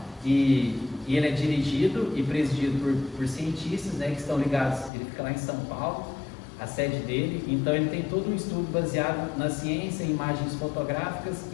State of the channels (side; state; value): right; drops out; at 4.9 s